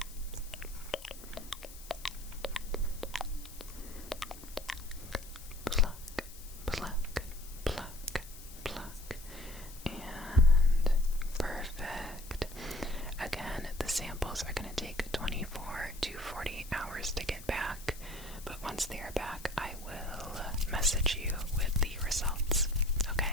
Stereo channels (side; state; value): left; noise; hiss, 17 dB below the sound